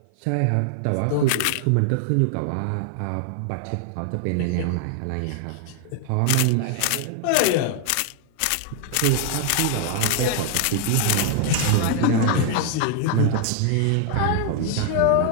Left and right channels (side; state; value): both; different; correlation 0.00